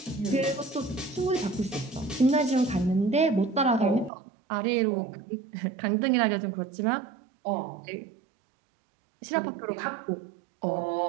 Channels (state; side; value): drops out; left; at 4.1 s